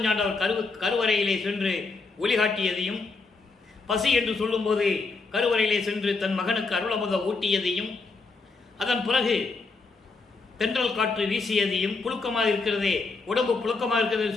கருவறையிலே சென்று ஒளிகாட்டியதையும், பசி என்று சொல்லும்போது கருவறையிலே சென்று தன் மகனுக்கு அருளமுத ஊட்டியதையும், அதன் பிறகு தென்றல் காற்று வீசியதையும், புழுக்கமாக இருக்கிறதே, உடம்பு புழுக்கமாக இருக்கிறது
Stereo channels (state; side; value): quieter; right; 4.1 dB